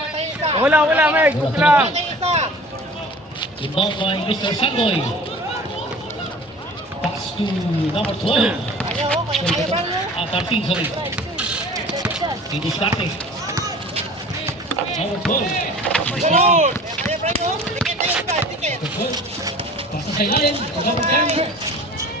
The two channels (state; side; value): normal; both; correlation 0.44